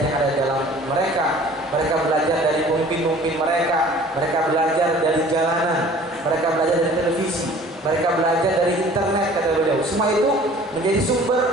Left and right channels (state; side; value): normal; both; correlation 0.49